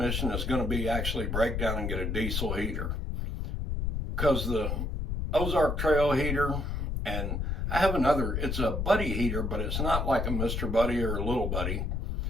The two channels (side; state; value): left; noise; rumble, 1 dB below the sound